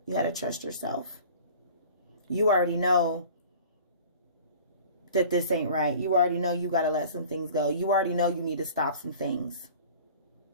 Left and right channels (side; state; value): both; inverted; correlation -0.44